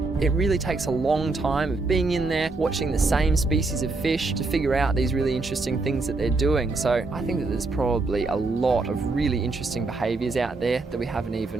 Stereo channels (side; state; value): left; quieter; 3.6 dB